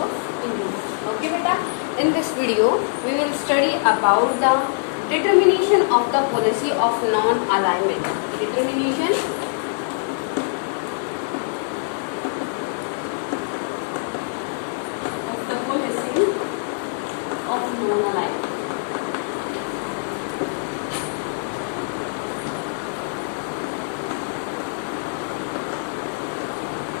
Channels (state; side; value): silent; right; digital silence